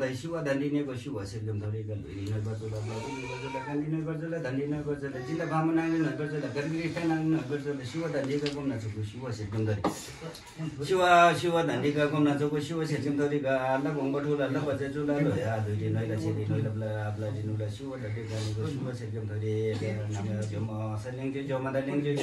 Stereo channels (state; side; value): identical; both; correlation 1.00